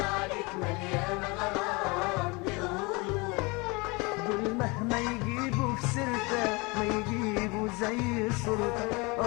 عليك مليانة غرام، دول مهما يجيبوا في سيرتك ما يجيبوا زي صورتك.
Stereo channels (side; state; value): right; quieter; 26.9 dB